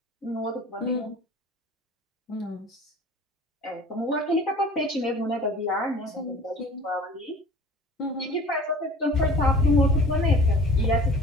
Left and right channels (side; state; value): both; normal; correlation 0.44